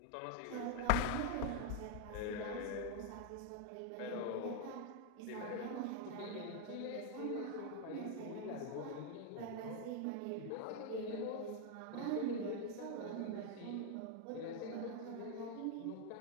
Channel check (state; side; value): different; both; correlation 0.01